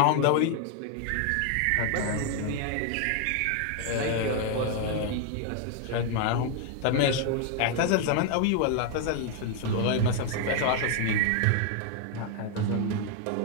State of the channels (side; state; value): both; different; correlation 0.00